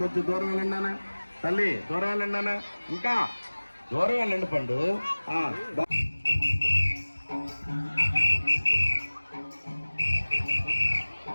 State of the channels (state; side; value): inverted; both; correlation -1.00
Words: కొంచెం దూరం వెళ్ళండి నాన్న. తల్లి దూరం వెళ్ళండి నాన్న. ఇంకా దూరం వెళ్ళండి పండు.